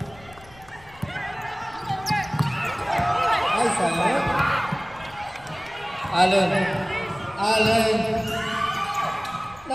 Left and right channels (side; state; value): left; noise; rumble, 24 dB below the sound